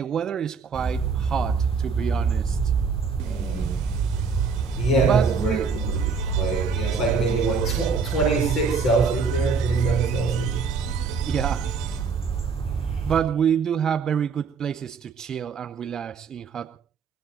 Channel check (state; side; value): quieter; left; 5.2 dB